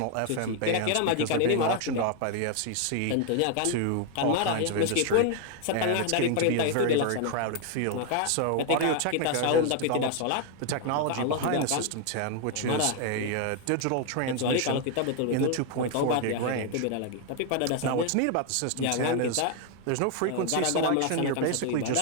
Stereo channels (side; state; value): both; different; correlation 0.00